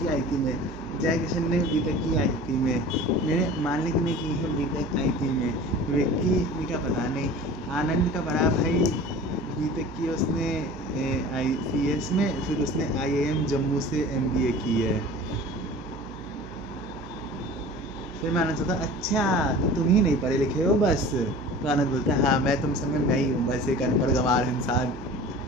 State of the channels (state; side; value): noise; right; hum, 15 dB below the sound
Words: आईटी में, जय किशन ने बीटेक की आईटी में, मैंने मालिक ने की है बीटेक आईटी में, विक्की का पता नहीं, आनंद का बड़ा भाई बीटेक की उसने ICS में, फिर उसने IIM जम्मू से MBA की है। फिर मैंने सोचा अच्छा तो तुम ही नहीं पढ़े लिखे हो बस। तो आनंद बोलता है हाँ मैं तुम समय मैं ही हूँ बस एक अनपढ़ गंवार इंसान।